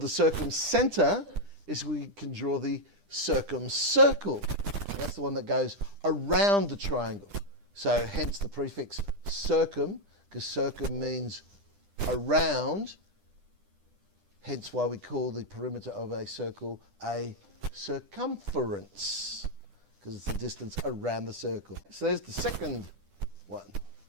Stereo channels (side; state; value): left; late; 10 ms